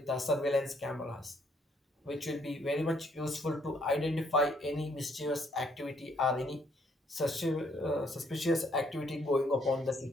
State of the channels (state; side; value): normal; both; correlation 0.68